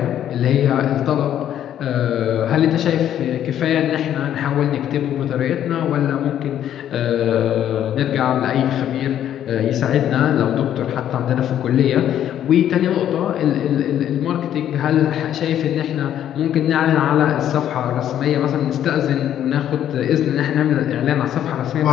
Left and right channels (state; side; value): quieter; right; 10.7 dB